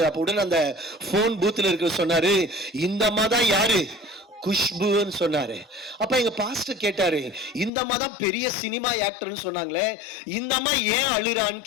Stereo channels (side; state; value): right; drops out; at 7.7 s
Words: அப்ப உடனே அந்த போன் பூத்துல இருக்க சொன்னாரு, இந்த அம்மா தான் யாரு, குஷ்புன்னு சொன்னாரு. அப்ப எங்க பாஸ்டர் கேட்டாரு, இந்த அம்மா தான் பெரிய சினிமா ஆக்டர்னு சொன்னாங்களே, இந்த அம்மா ஏன் அழுறான்னு